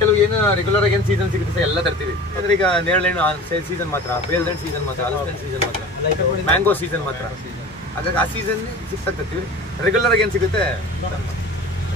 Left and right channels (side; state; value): both; normal; correlation 0.38